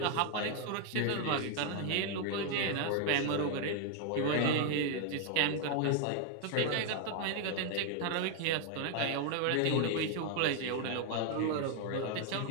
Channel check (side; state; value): both; different; correlation 0.01